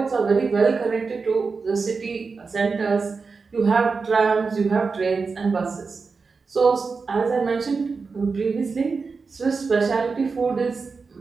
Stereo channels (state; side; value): quieter; left; 4.7 dB